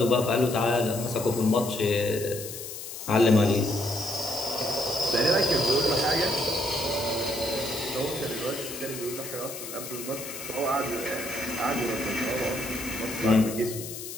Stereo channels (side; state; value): left; noise; hiss, 9 dB below the sound